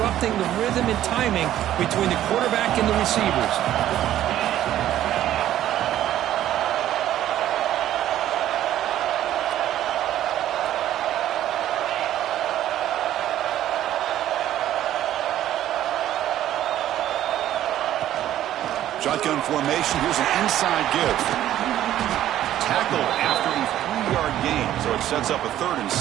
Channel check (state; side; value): quieter; left; 12.4 dB